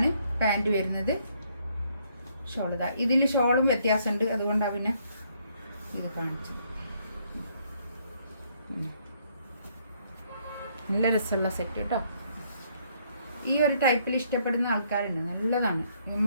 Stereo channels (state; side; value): inverted; both; correlation -0.69